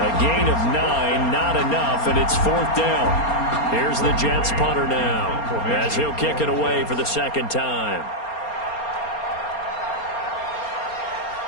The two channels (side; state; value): right; late; 4.3 ms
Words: gain of 9, not enough, and it's 4th down. Here's the Jets punter now, as he'll kick it away for the 2nd time.